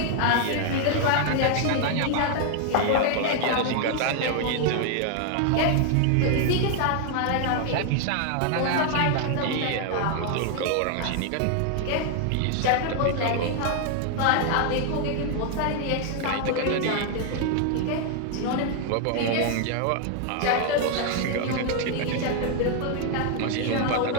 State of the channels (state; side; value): different; both; correlation 0.00